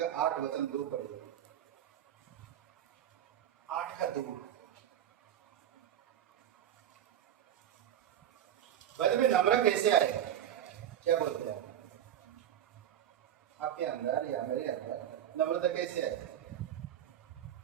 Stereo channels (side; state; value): left; quieter; 10.6 dB